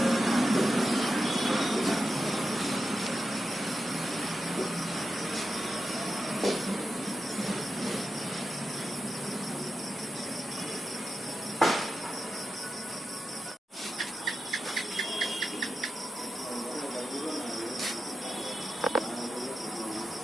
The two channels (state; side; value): normal; both; correlation 0.90